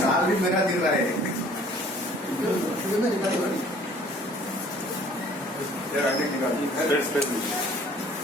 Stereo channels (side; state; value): both; normal; correlation 0.54